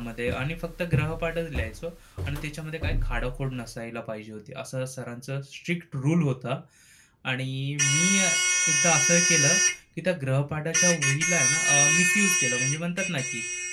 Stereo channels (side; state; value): both; identical; correlation 1.00